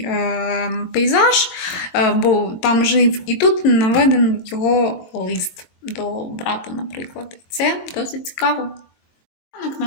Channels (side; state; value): right; late; 23 ms